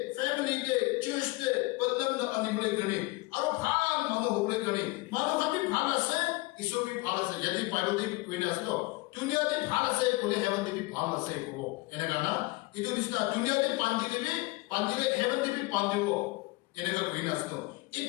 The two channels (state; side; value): quieter; right; 23.2 dB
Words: फैमिली ते चर्च ते बंधन द अनिबले गणे और फाल मानो बोले गणे मानो कभी फाल से ईश्वर भी फाल से यदि बाइबल दे कोई ना तो दुनिया दे फाल से कोने हेवन दे भी फाल से को इनका ना itu bisa dunia di pandile heaven di pandiwo enega greenasto